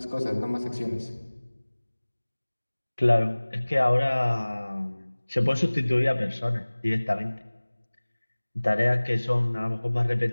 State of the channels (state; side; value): inverted; both; correlation -1.00